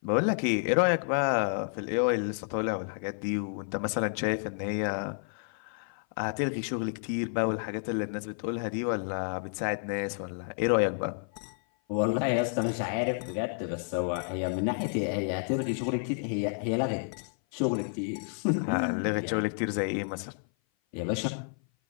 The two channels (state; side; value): silent; right; 56 dB below the other